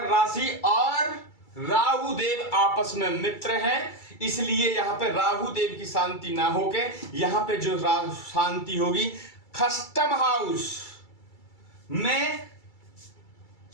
राशि और राहु देव आपस में मित्र हैं, इसलिए यहाँ पे राहु देव की शांति ना होके यहाँ पे जो शांति होगी खष्टम हाउस में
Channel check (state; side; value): late; right; 2.3 ms